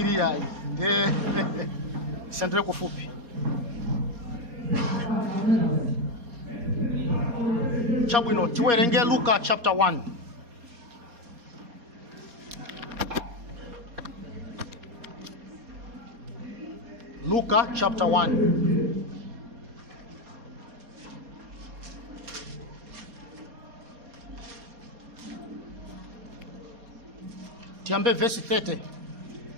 yayi. Sendele kufupi. Chabwino tiwerenge Luka chapter 1. Luka chapter 1. Tiambe verse 30.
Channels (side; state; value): left; late; 4.2 ms